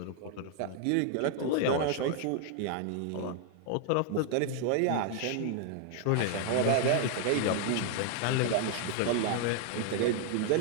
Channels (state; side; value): different; both; correlation 0.00